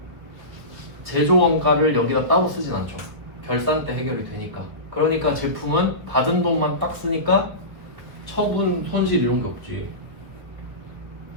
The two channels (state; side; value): late; left; 1.4 ms